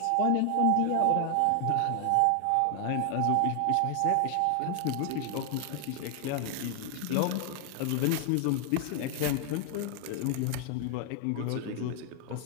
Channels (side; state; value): both; different; correlation 0.00